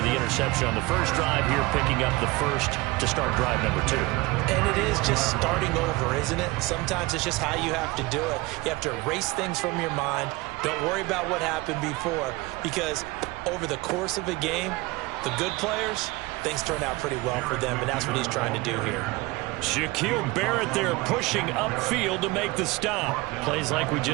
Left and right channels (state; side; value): quieter; left; 22.5 dB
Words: the interception on the first drive here, picking up the first to start drive number 2. And it is just starting over, isn't it? Sometimes it's just how you have to do it. You have to erase things from your mind. Don't worry about what happened before, because over the course of a game, the good players, things turn out pretty well for them, and that's what he's trying to do here. Shaquille Barrett there pushing upfield to make the stop. Plays like we